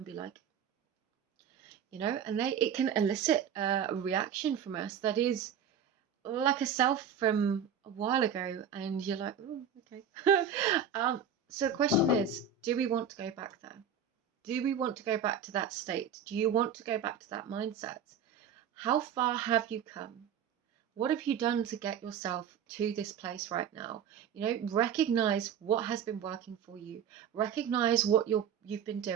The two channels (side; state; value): left; quieter; 7.4 dB